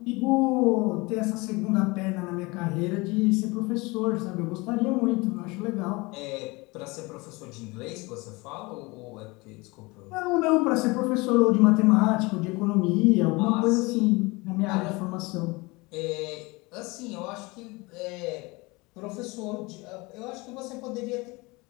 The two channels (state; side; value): quieter; right; 24.6 dB